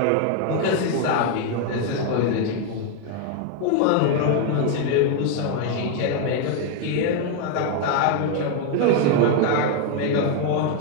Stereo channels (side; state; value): both; different; correlation 0.01